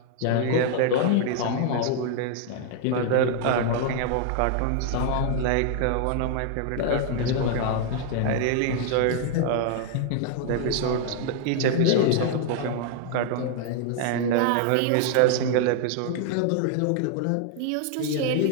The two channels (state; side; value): different; both; correlation 0.00